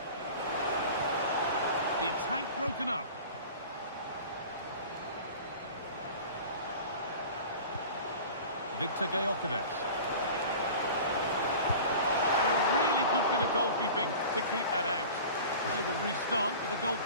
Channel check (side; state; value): both; inverted; correlation -0.38